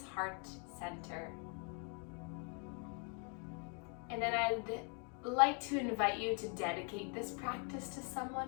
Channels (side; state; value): right; quieter; 38.8 dB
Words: heart center. And then I'd like to invite you to dedicate this practice to